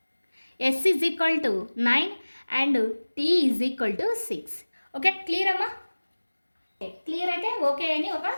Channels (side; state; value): both; inverted; correlation -1.00